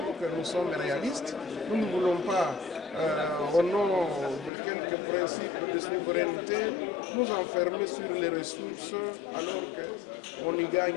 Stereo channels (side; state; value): right; drops out; at 4.5 s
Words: que nous sommes réalistes. Nous ne voulons pas, au nom de quelques principes de souveraineté, nous enfermer sur les ressources alors qu'on n'y